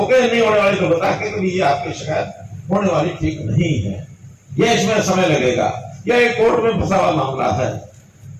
गए, नहीं होने वाली तो बता के भी ये आपकी शिकायत होने वाली ठीक नहीं है, यह इसमें समय लगेगा, यह एक कोर्ट में फंसा हुआ मामला है,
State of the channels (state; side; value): identical; both; correlation 1.00